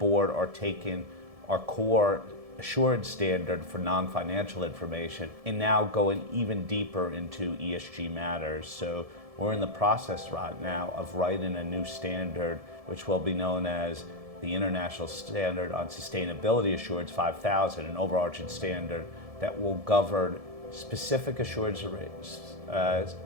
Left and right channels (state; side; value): late; left; 1.7 ms